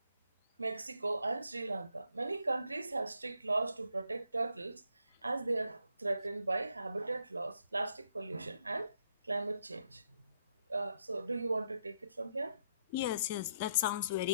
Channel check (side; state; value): both; inverted; correlation -0.75